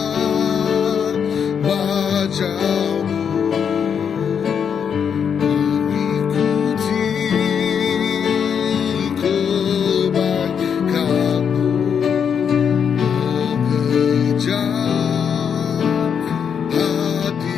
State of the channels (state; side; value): quieter; right; 7.3 dB